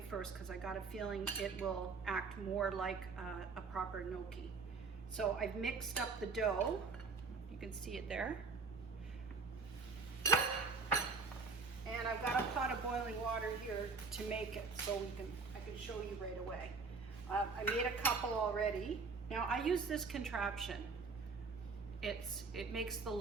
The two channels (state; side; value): quieter; left; 4.5 dB